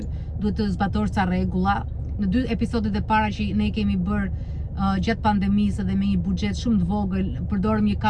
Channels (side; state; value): both; identical; correlation 1.00